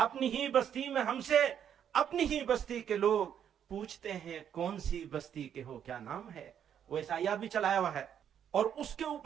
ہی بستی میں ہم سے اپنی ہی بستی کے لوگ پوچھتے ہیں کون سی بستی کے ہو، کیا نام ہے۔ وہ عیسائیات بھی چلایا ہوا ہے، اور اس کے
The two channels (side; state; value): left; quieter; 9.0 dB